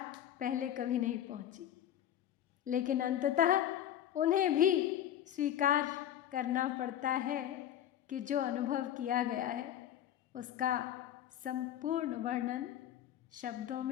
पहले कभी नहीं पहुंची। लेकिन अंततः उन्हें भी स्वीकार करना पड़ता है कि जो अनुभव किया गया है उसका संपूर्ण वर्णन शब्दों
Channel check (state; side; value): quieter; right; 10.9 dB